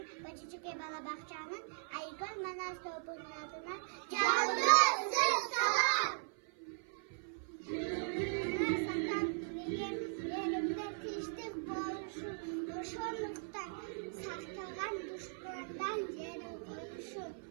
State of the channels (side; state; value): left; silent; 52 dB below the other